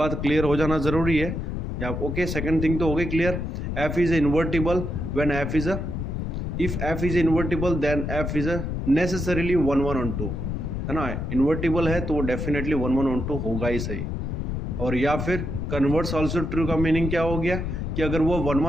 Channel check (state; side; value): noise; left; rumble, 3 dB below the sound